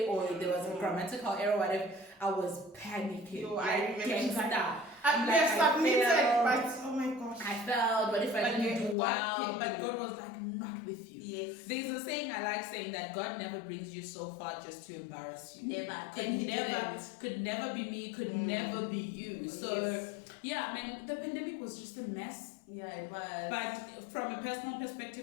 or there was a grammatical error, whatever. I was panicking. I remember I submitted, but oh my gosh. I failed, but if I didn't do well, but God was like, not with you. Yes. There's a saying I like saying that God never brings you so far just to embarrass you. Never. Could never be me, could never be you. So yeah, I mean, the pandemic was just a mess. Yeah, it was. But from a personal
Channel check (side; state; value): right; drops out; at 9.0 s